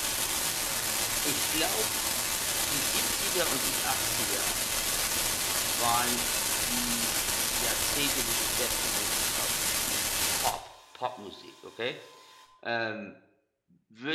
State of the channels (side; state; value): both; identical; correlation 1.00